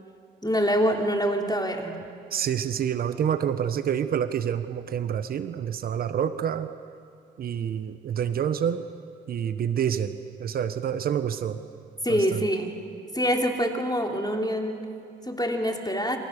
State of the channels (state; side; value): quieter; left; 3.5 dB